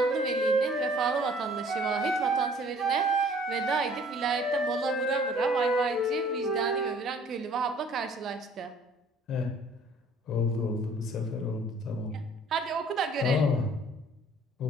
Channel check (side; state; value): both; normal; correlation 0.54